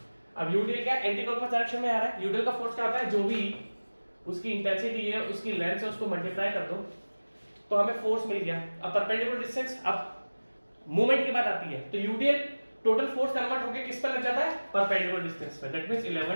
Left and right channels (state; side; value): inverted; both; correlation -1.00